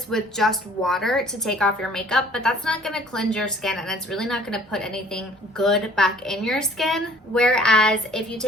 with just water to take off your makeup, but that's not going to cleanse your skin and it's really not going to put anything good back in your skin. Whereas if you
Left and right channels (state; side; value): normal; both; correlation 0.54